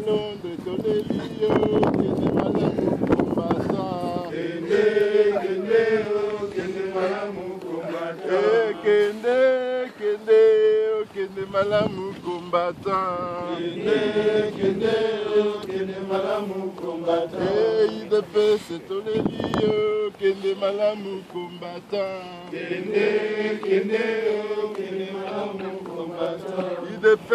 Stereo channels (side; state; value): both; identical; correlation 1.00